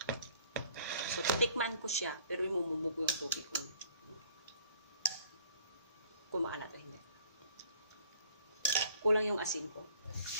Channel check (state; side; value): inverted; both; correlation -0.55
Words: So, titikman ko siya, pero imumumog yung tubig ko. Kung maalat o hindi. Kulang yung asin ko.